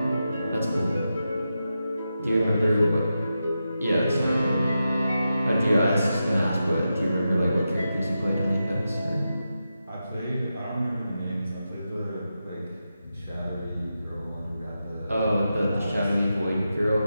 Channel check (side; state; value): both; inverted; correlation -0.89